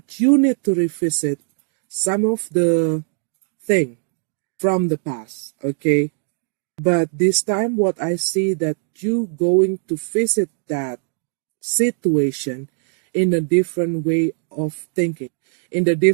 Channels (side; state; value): left; silent; 65 dB below the other